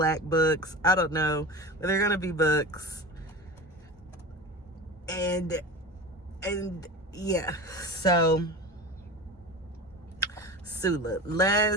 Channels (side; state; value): both; normal; correlation 0.30